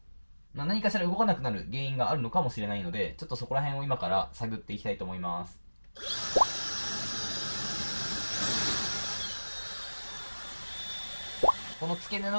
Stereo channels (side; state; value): both; inverted; correlation -1.00